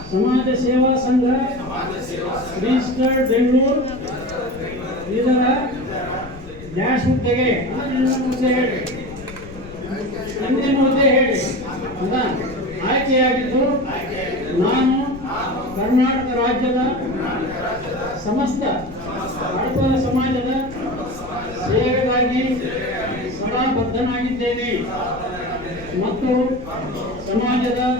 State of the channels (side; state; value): left; noise; rumble, 16 dB below the sound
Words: ಸಮಾಜ ಸೇವಾ ಸಂಘ ರಿಜಿಸ್ಟರ್ಡ್ ಬೆಂಗಳೂರು ಇದರ ಡ್ಯಾಶ್ ಹುದ್ದೆಗೆ ಹುದ್ದೆ ಹೇಳಿ ಆಯ್ಕೆಯಾಗಿದ್ದು ನಾನು ಕರ್ನಾಟಕ ರಾಜ್ಯದ ಸಮಸ್ತ ಹಡಪದ ಸಮಾಜದ ಸೇವೆಗಾಗಿ ಸದಾ ಬದ್ಧನಾಗಿದ್ದೇನೆ ಮತ್ತು ಸಮಾಜದ